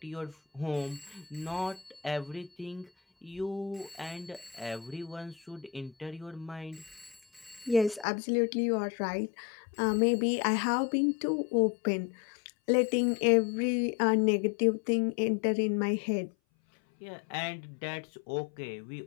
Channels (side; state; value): right; drops out; at 8.1 s